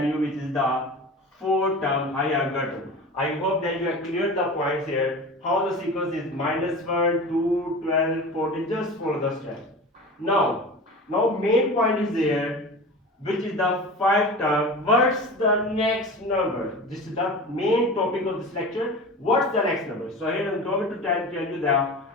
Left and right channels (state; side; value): normal; both; correlation 0.33